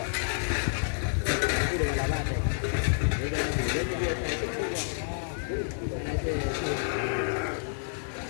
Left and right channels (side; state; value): right; silent; 58 dB below the other